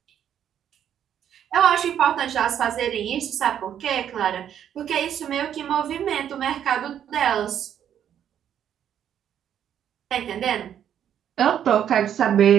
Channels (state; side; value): quieter; left; 9.6 dB